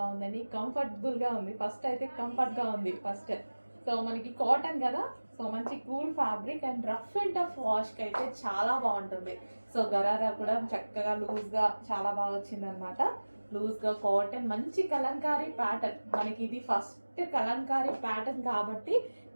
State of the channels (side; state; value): both; inverted; correlation -1.00